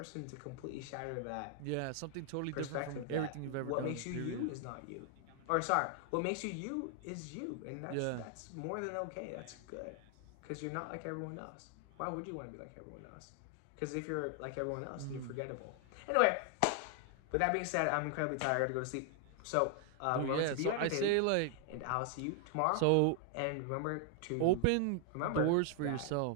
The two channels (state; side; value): different; both; correlation 0.00